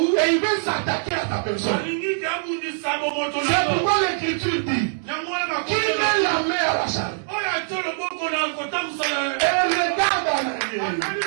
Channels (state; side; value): silent; left; digital silence